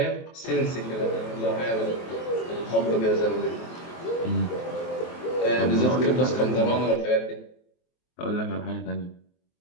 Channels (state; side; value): late; right; 23 ms